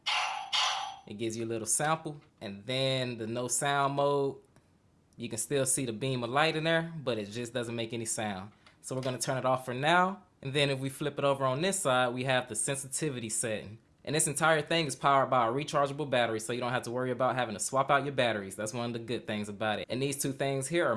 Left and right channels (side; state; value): both; identical; correlation 1.00